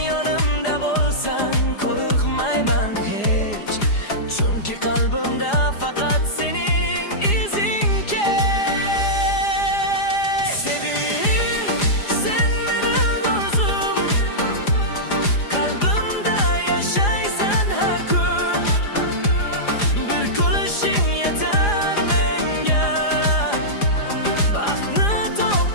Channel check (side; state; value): right; late; 4.9 ms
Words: yonimda bo'lsan qo'rqmayman hech, chunki qalbimda faqat sening izing kech. Seving, sen mening orzum, qalbimda yashaysan har kun. Bir kulishing yetar menga, baxtni